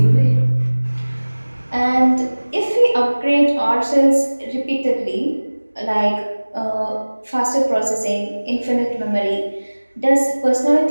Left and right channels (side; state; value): both; inverted; correlation -1.00